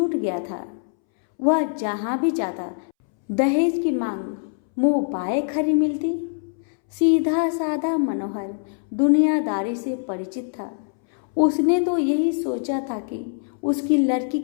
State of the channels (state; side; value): silent; right; 63 dB below the other